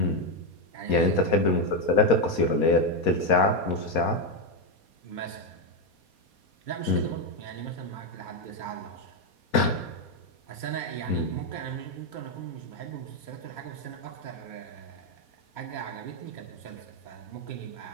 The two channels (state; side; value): late; right; 4.2 ms